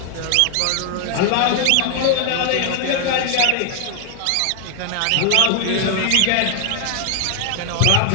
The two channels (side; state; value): both; different; correlation 0.00